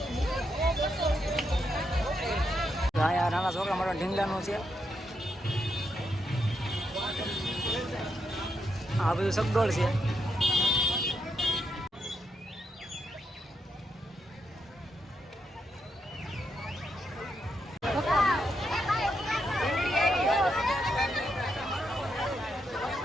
મજાનો છે. આ બધું સગડોળ છે.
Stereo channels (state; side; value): normal; both; correlation 0.81